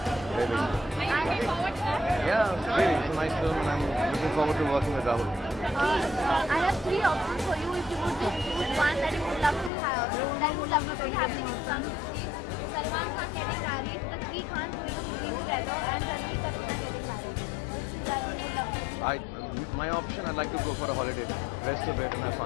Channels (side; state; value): right; drops out; at 9.7 s